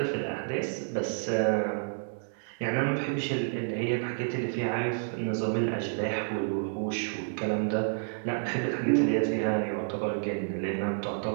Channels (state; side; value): silent; left; digital silence